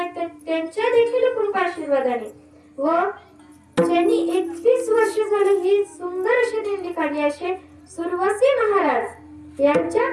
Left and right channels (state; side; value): identical; both; correlation 1.00